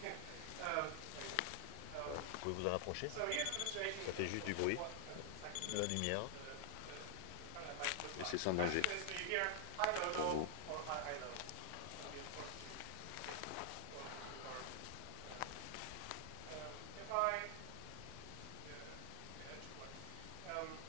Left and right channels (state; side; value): different; both; correlation 0.00